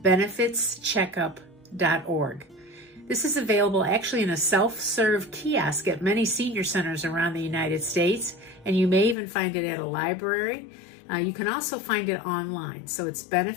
This is available actually in a self-serve kiosk at many senior centers around the United States, and you may even find it at a library. You can also find it online. So it's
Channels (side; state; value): right; drops out; at 9.2 s